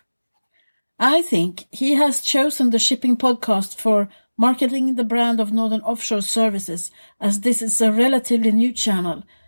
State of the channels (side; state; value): both; inverted; correlation -1.00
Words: I think he has chosen the Shipping Podcast for marketing the brand of Northern Offshore Services, as this is a relatively new channel